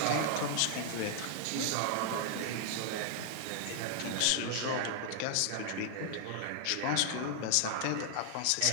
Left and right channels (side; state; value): both; different; correlation 0.00